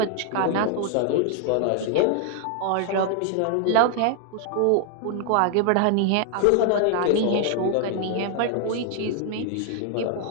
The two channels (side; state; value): both; different; correlation 0.00